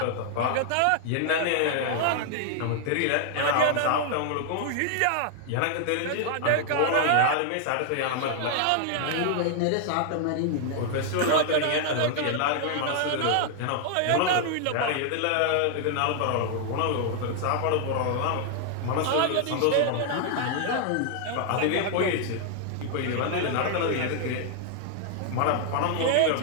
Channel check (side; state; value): both; different; correlation 0.00